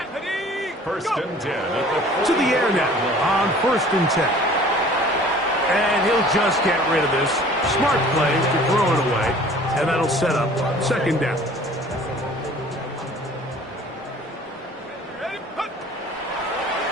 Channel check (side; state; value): both; normal; correlation 0.49